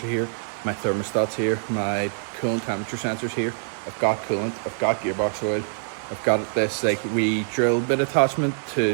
are here, my thermostat's here, my coolant temperature sensor's here, I've got coolant, I've got gearbox oil, I've got this like wee drill bit attachment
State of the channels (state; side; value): silent; left; digital silence